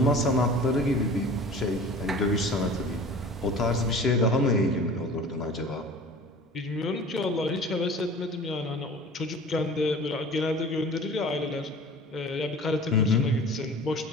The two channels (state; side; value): normal; both; correlation 0.42